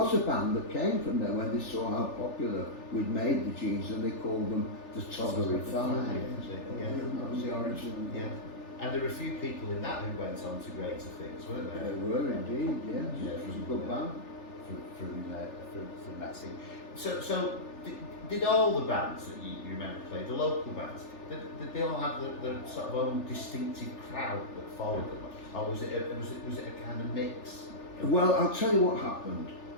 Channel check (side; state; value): right; late; 3.4 ms